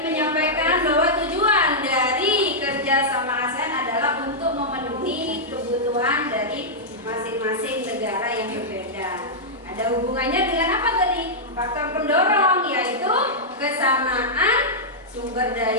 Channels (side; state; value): both; normal; correlation -0.09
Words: bahwa tujuan dari kerjasama ASEAN adalah untuk memenuhi kebutuhan dari masing-masing negara yang berbeda. Ada hubungannya dengan apa tadi? Faktor pendorong, yaitu kesamaan sumber